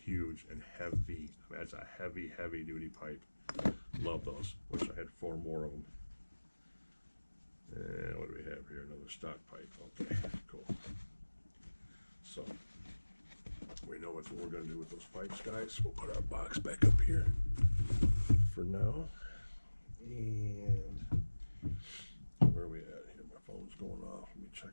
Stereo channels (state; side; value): inverted; both; correlation -1.00